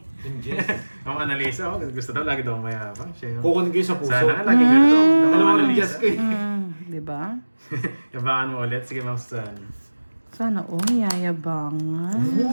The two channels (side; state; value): both; inverted; correlation -1.00